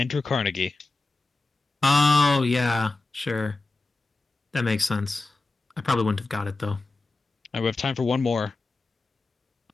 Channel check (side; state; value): right; quieter; 3.3 dB